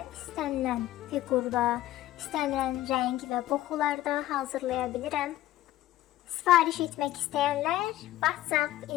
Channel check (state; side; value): quieter; right; 14.6 dB